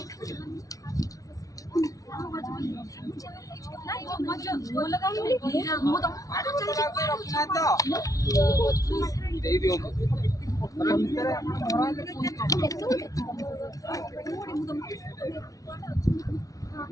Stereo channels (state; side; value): late; right; 0.17 ms